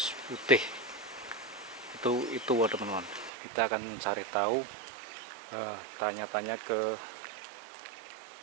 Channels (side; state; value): left; drops out; at 3.3 s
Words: putih itu teman-teman. Kita akan cari tahu, tanya-tanya ke